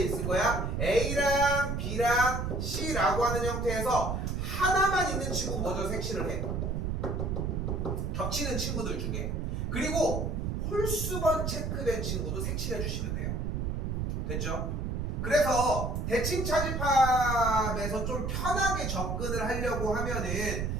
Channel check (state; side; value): noise; right; rumble, 1 dB below the sound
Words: 있을 거야? A랑 B랑 C라고 하는 형태에서 하나만 있는 친구 먼저 색칠을 해. 겹치는 친구들 중에. 그리고 홀수번 체크된 친구도 색칠해 주시면 돼요. 됐죠? 그래서 대칭 차집합에서 좀 편하게 접근을 하려고 하면은